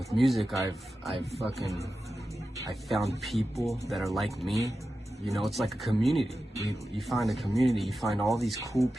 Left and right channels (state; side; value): normal; both; correlation 0.92